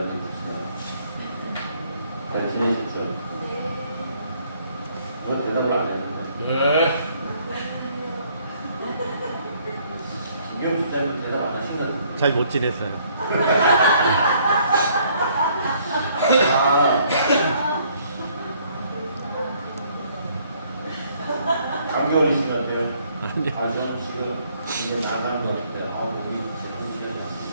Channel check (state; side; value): inverted; both; correlation -0.64